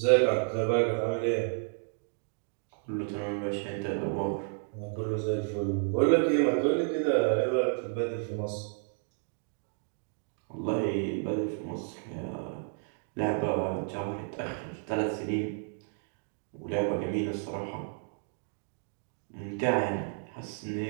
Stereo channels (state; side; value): silent; left; 57 dB below the other